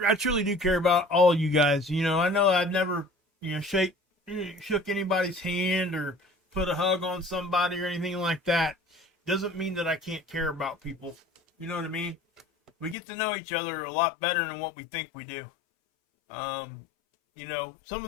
truly do care about all you guys. You know, I know I've never, you know, shook anybody's hand or put a hug on somebody or anything like that. Doesn't mean that I can't care about people. You know what I mean? We get to know each other a lot better than what we think we do. You know, some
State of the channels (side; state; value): right; drops out; at 13.0 s